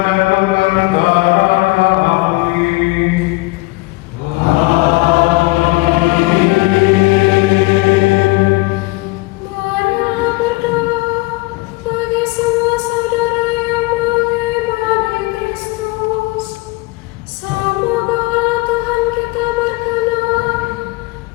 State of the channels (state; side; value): quieter; right; 23.4 dB